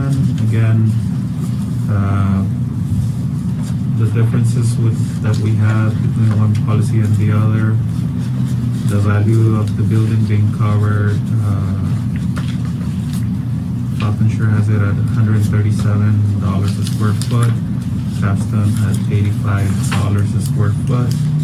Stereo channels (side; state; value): both; identical; correlation 1.00